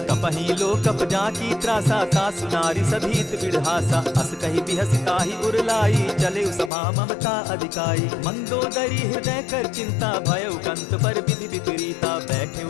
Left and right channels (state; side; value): drops out; right; at 6.7 s